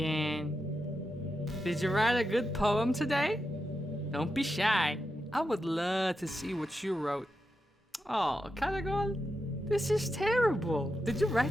Did you write a good poem today? Don't be shy. I would love to see what you wrote. Oh, Caragol, this is terrible. Did you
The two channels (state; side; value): normal; both; correlation 0.87